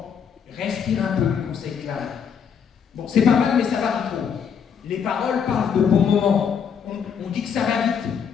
respire un peu, conseille Clara. Bon, c'est pas mal, mais ça varie trop. Les paroles parlent de bons moments. On dit que ça va vite.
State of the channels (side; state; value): right; quieter; 7.2 dB